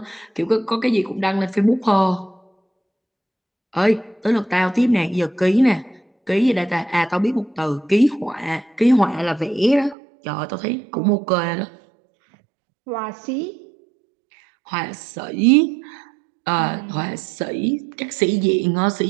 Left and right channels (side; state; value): left; drops out; at 10.0 s